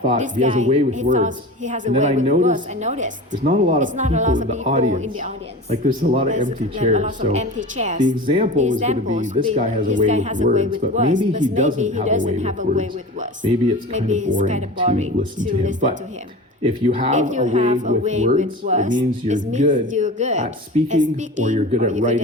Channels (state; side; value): normal; both; correlation 0.33